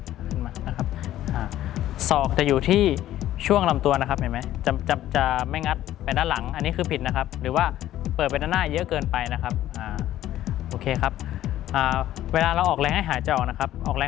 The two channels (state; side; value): quieter; right; 13.3 dB